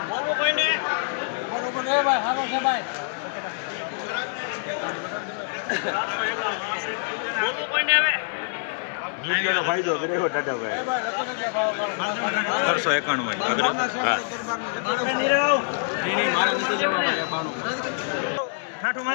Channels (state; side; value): silent; right; digital silence